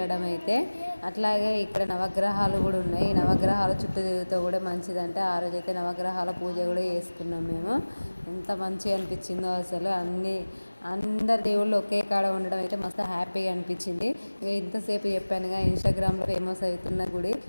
అయితే. అట్లాగే ఇక్కడ నవగ్రహాలు కూడా ఉన్నాయి. ఈ నవగ్రహాలు చుట్టూ తిరుగుతూ కూడా మంచిదంటే, ఆ రోజు అయితే నవగ్రహాల పూజ కూడా చేసుకున్నాం మేము. ఎంత మంచిగా అనిపించిందో అసలు. అందరు దేవుళ్ళు ఒకే కాడ ఉండడం అయితే మస్తు హ్యాపీగా అనిపించింది. ఇక ఇంతసేపు చెప్పానుగా ఇన్స్టాగ్రామ్లో ఫేమస్ అవుతున్న గుడి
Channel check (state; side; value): inverted; both; correlation -1.00